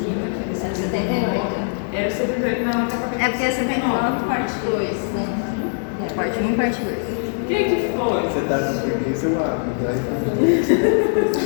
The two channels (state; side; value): silent; right; 64 dB below the other